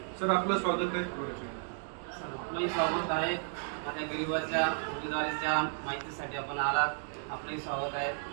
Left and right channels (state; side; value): silent; left; 55 dB below the other